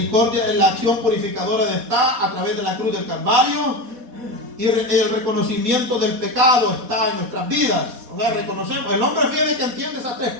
la acción purificadora está a través de la cruz del Calvario, y el reconocimiento del pecado está en nuestras vidas. O sea, reconocemos. El hombre fiel que entiende esas tres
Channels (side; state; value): left; late; 4.1 ms